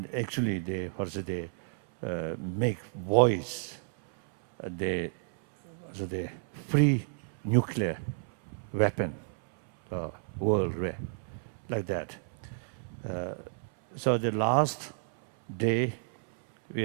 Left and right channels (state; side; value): silent; left; 57 dB below the other